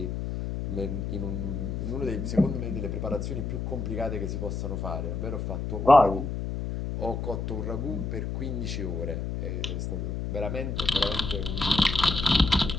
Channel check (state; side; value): noise; left; hum, 3 dB below the sound